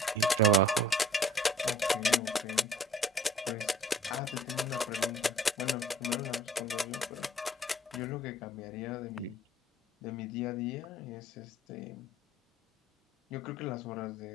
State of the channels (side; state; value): both; normal; correlation 0.52